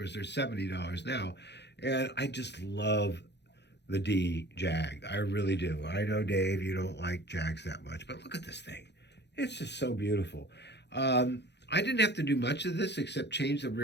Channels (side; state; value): right; late; 0.50 ms